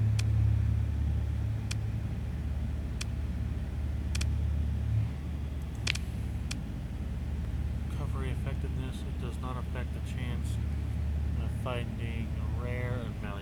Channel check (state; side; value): identical; both; correlation 1.00